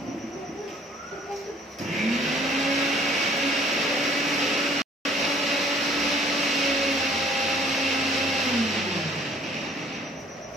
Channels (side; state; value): both; normal; correlation 0.57